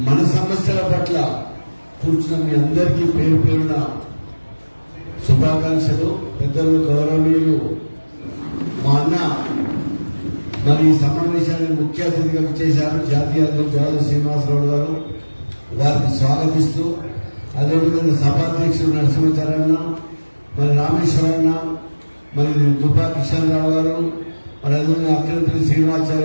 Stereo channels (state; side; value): inverted; both; correlation -1.00